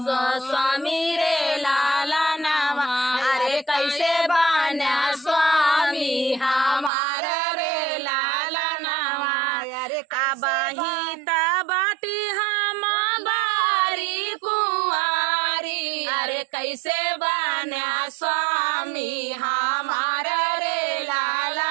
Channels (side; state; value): left; drops out; at 6.9 s